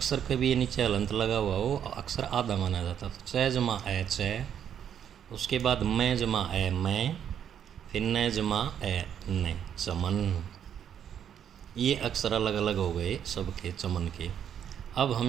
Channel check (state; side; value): quieter; left; 9.0 dB